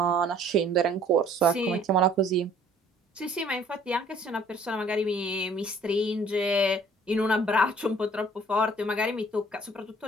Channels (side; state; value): both; normal; correlation 0.56